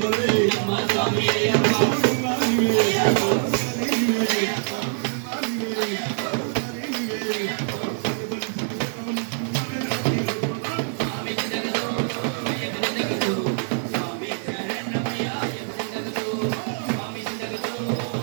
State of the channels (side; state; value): left; silent; digital silence